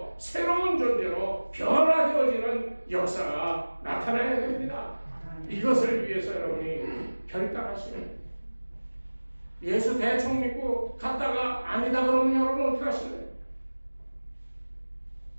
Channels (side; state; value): both; inverted; correlation -1.00